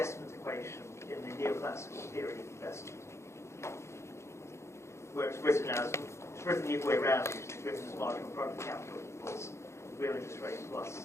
equation in the neoclassical theory of investment, where it's written the other way around. It's written as marginal product capital equals real interest rate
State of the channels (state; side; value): late; right; 0.13 ms